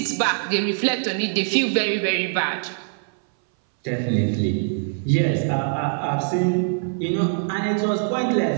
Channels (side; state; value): left; silent; 60 dB below the other